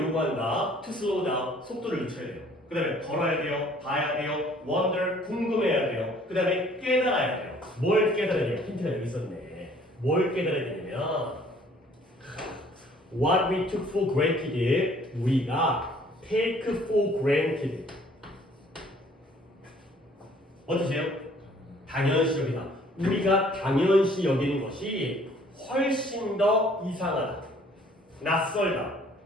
요구한다? To slow down, 속도를 늦춰야 돼요. 그 다음에 걸어야 돼요, 봐야 돼요, wonder, 궁금해야 돼요. 그 다음에 깨달아야 돼요. 뭘 깨달아야 돼요? 힌트가 여기 있었네. 뭘 깨달아야 되냐면 What we took for granted, 우리가 take for granted. 어떠세요? 당연시 여기다. 우리가 당연시 여기는 것이 훨씬 더 이상하다, 낯설다,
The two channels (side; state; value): both; normal; correlation 0.57